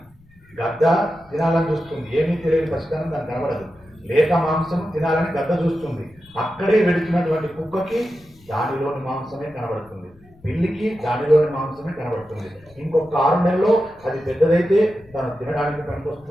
గద్ద తినాలని చూస్తుంది, ఏమీ తెలియని పసితనం దానికి కనబడదు. లేక మాంసం తినాలని గద్ద చూస్తుంది. అక్కడే వెడుతున్నటువంటి కుక్కకి దానిలోని మాంసమే కనబడుతుంది, పిల్లికి దానిలోని మాంసమే కనబడుతుంది. ఇంకొక 6 నెలల్లో అది పెద్దదైతే తను తినడానికి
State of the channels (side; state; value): left; noise; rumble, 28 dB below the sound